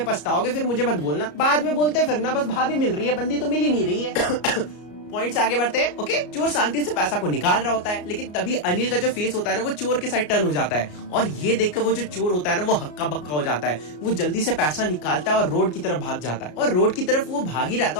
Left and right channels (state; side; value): late; right; 33 ms